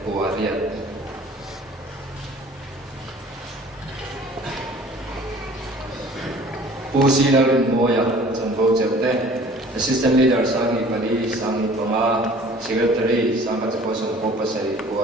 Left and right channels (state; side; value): normal; both; correlation 0.49